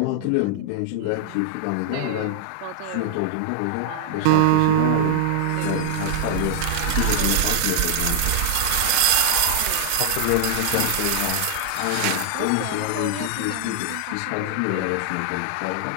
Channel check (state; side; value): different; both; correlation -0.01